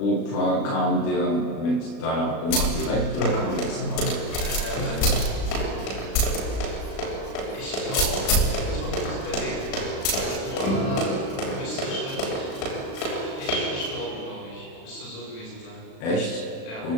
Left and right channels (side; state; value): right; late; 36 ms